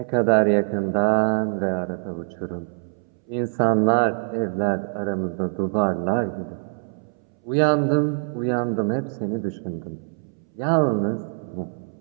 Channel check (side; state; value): left; silent; 63 dB below the other